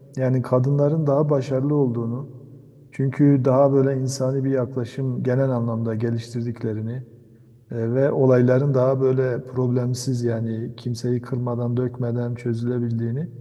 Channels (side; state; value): both; identical; correlation 1.00